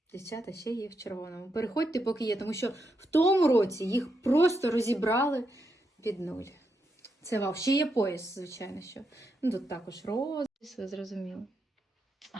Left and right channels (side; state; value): both; normal; correlation 0.82